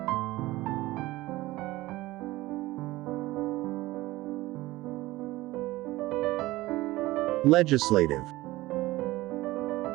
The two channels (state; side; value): quieter; left; 18.3 dB